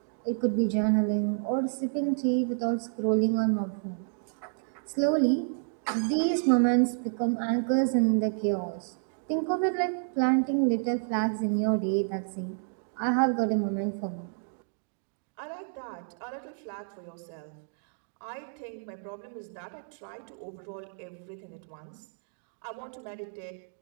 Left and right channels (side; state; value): left; silent; digital silence